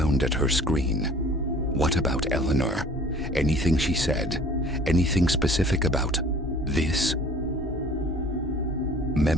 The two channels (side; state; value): both; normal; correlation 0.50